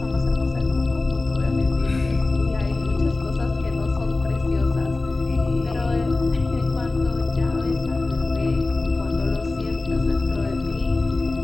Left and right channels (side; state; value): right; quieter; 3.2 dB